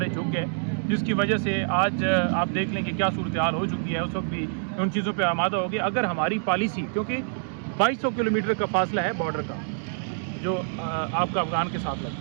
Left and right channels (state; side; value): silent; left; digital silence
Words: झुक गए, जिसकी वजह से आज आप देख लें कि क्या सूरत हाल हो चुकी है। उस वक्त भी उन चीज़ों पे आमादा हो गया। अगर हमारी पॉलिसी, क्योंकि 2200 किलोमीटर का फासला है बॉर्डर का जो आपका अफगान के साथ